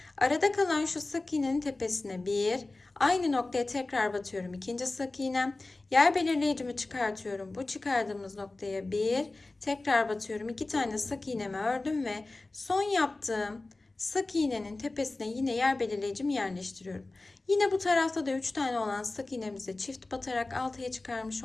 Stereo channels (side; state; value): right; quieter; 3.1 dB